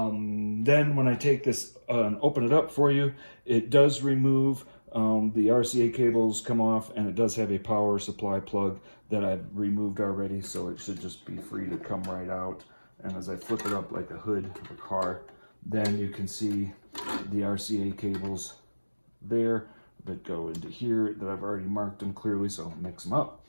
Then when I take this and open it up for you, it does remove the RCA cables come off, and it does have a power supply plug that I've removed already, so it should just be free to come right out. And as I flip it up like a hood of a car, then you can see the RCA cables there that go into here that I've already marked them clearly, so I'll mix them up.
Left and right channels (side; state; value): both; inverted; correlation -1.00